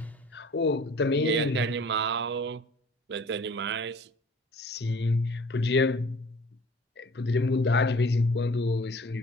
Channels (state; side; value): normal; both; correlation 0.48